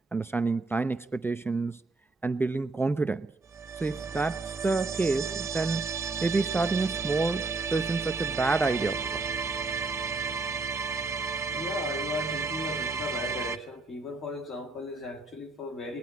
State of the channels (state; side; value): quieter; left; 3.5 dB